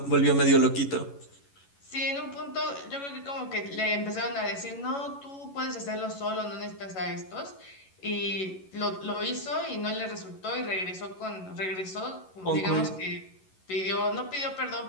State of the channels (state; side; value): late; right; 11 ms